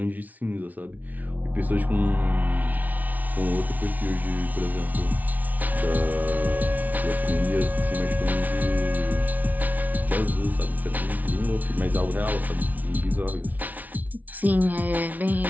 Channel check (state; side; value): late; left; 0.076 ms